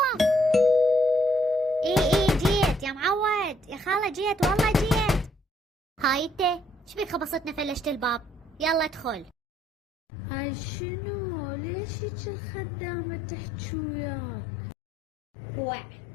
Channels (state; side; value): drops out; right; at 9.3 s